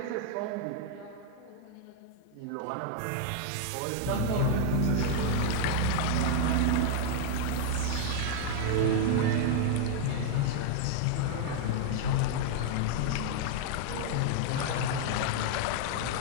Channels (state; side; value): different; both; correlation -0.01